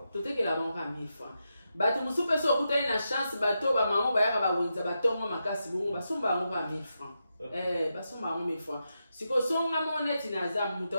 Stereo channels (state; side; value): inverted; both; correlation -0.86